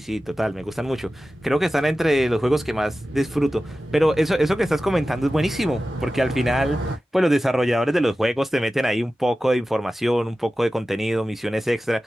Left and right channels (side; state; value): both; normal; correlation 0.95